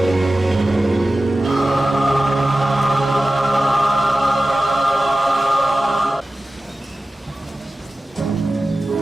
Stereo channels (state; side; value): normal; both; correlation 0.95